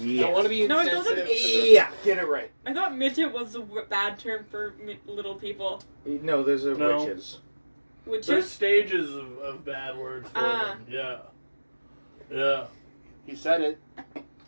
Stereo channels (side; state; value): both; inverted; correlation -1.00